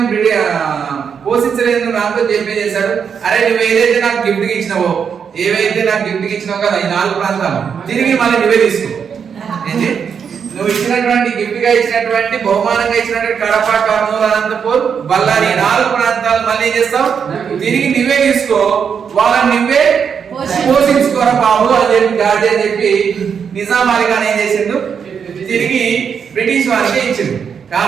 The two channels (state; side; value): quieter; left; 6.9 dB